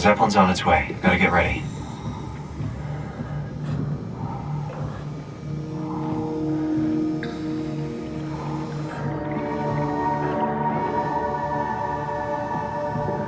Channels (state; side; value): identical; both; correlation 1.00